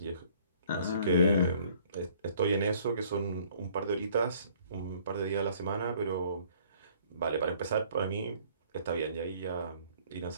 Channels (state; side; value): inverted; both; correlation -0.58